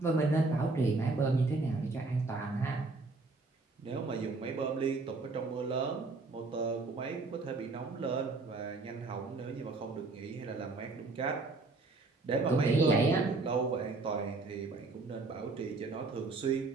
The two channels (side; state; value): left; quieter; 3.6 dB